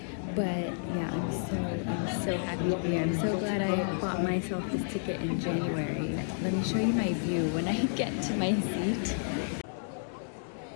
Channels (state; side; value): silent; right; digital silence